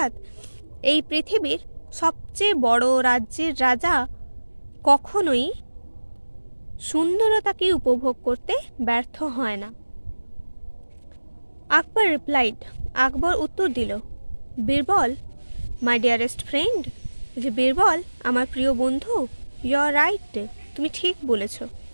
এই পৃথিবীর সবচেয়ে বড় রাজ্যের রাজা কখনোই সুন্দরতাকে উপভোগ করতে ব্যর্থ হয় না। আকবর রিপ্লাইড, আকবর উত্তর দিল, বীরবল মাই ডিয়ারেস্ট ফ্রেন্ড, যে বীরবল আমার প্রিয় বন্ধু, ইউ আর রাইট, তুমি ঠিক বলেছ।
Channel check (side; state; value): both; inverted; correlation -1.00